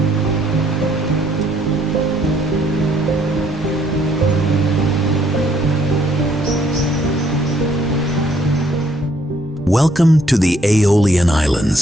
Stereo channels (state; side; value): normal; both; correlation 0.66